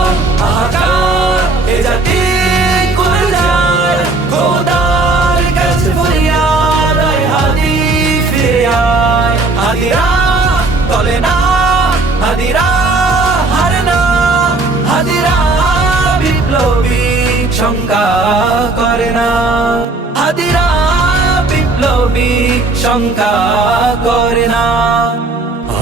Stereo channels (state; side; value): quieter; left; 3.3 dB